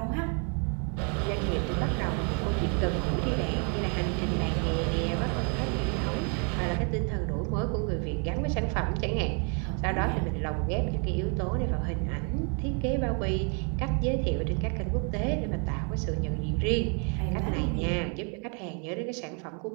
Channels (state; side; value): quieter; left; 38.7 dB